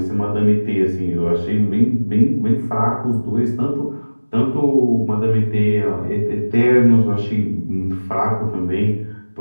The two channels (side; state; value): both; inverted; correlation -1.00